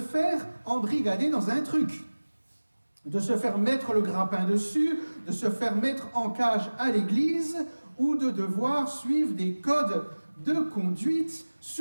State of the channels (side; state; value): both; inverted; correlation -1.00